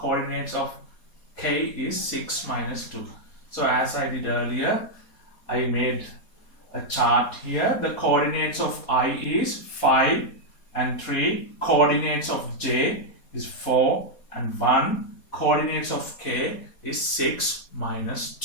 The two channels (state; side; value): late; right; 4.2 ms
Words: of K is 6, minus 2. So as I did earlier, I made a chart here. The coordinates of I is 5 and 3. Coordinates of J is 4 and 1. Coordinates of k is 6 minus